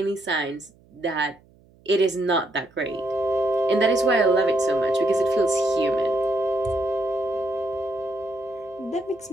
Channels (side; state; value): right; noise; hum, 30 dB below the sound